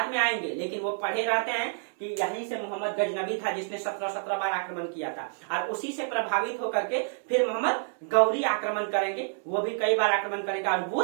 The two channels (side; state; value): left; silent; digital silence